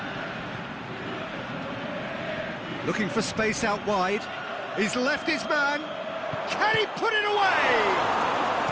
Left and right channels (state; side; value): identical; both; correlation 1.00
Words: Looking for space out wide. He's left his man. Can he put it away?